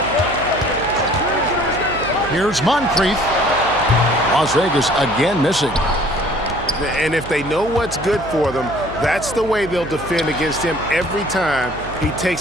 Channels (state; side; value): noise; right; hum, 14 dB below the sound